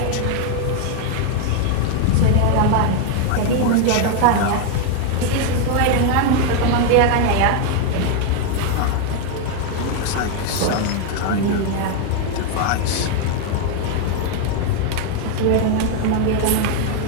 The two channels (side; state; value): both; different; correlation 0.01